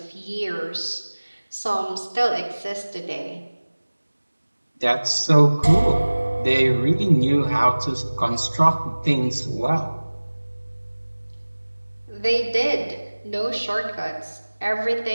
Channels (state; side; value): inverted; both; correlation -1.00